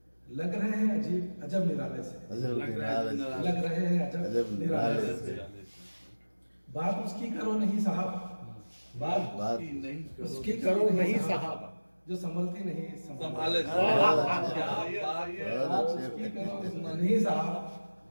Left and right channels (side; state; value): both; inverted; correlation -1.00